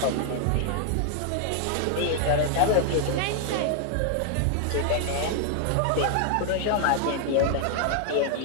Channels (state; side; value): different; both; correlation 0.00